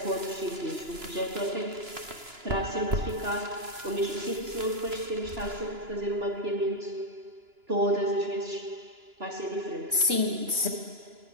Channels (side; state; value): left; late; 2.9 ms